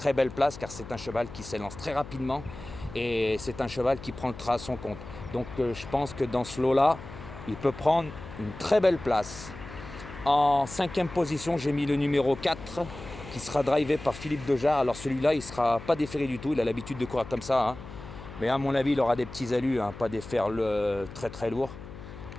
belle place car c'est un cheval qui s'élance très rapidement et c'est un cheval qui prend le train à son compte. Donc je pense que dans ce lot-là, il peut prendre une très belle place. En cinquième position, j'ai mis le numéro 4 qui sera drivé par Philippe Dejarre. Alors celui-là, il ne sera pas déféré du tout, il a l'habitude de courir comme ça. Hein. Mais à mon avis, il aura des petits allus, hein, pas des fers très très lourds.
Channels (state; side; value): noise; left; hum, 14 dB below the sound